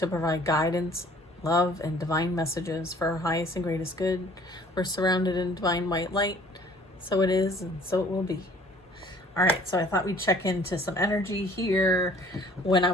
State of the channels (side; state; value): both; normal; correlation 0.54